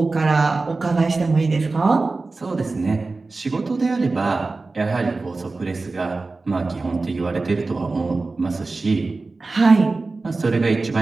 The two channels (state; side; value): quieter; left; 3.6 dB